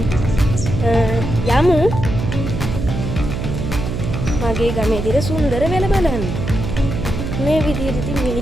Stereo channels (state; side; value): noise; right; hum, 4 dB below the sound